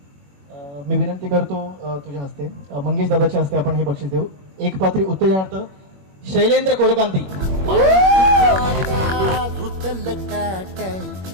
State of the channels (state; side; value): late; left; 21 ms